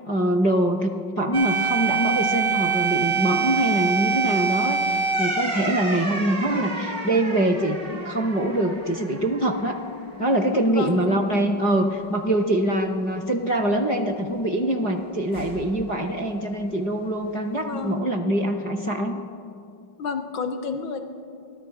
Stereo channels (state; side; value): late; right; 5.4 ms